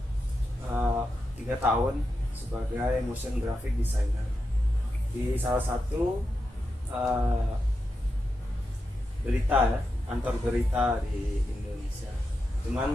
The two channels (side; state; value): both; normal; correlation 0.88